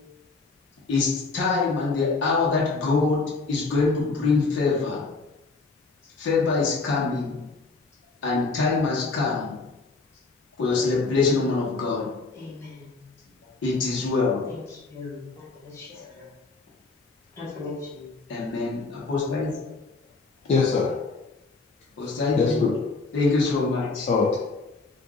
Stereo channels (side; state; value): right; quieter; 3.7 dB